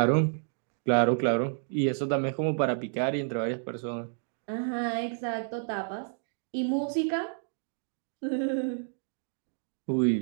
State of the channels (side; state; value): left; silent; digital silence